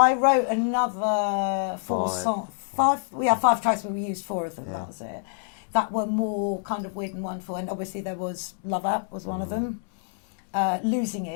wrote another five tracks, but we used 4 of them. Yeah. That was it. That were more kind of weird and wonderful, and obviously there was Love Up was one of them. Losing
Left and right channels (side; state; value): right; silent; digital silence